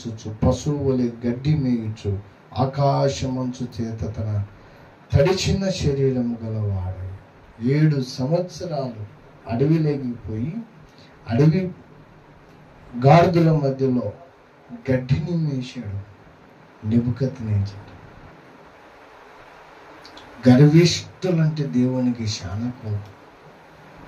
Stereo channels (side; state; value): both; identical; correlation 1.00